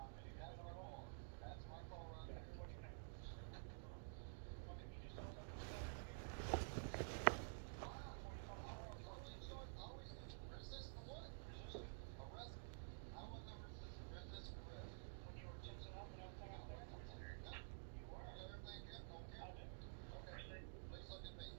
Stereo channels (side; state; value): left; silent; digital silence